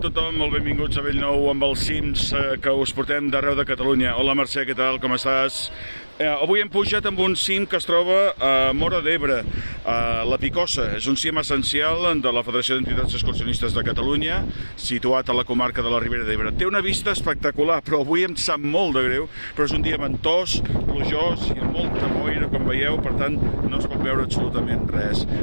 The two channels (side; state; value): both; inverted; correlation -1.00